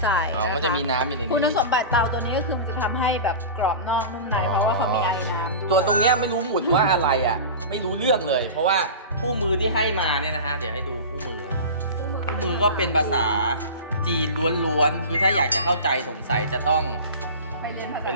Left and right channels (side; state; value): both; inverted; correlation -0.31